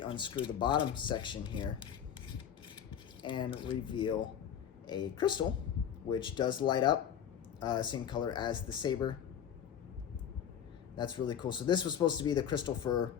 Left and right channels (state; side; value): quieter; right; 8.9 dB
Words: unscrew the bottom section here and reveal a crystal, which does light up, same color as the saber. That's really cool. So this was supposed to be the crystal for